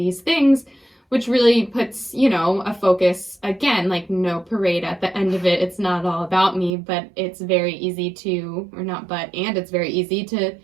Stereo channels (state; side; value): drops out; left; at 6.7 s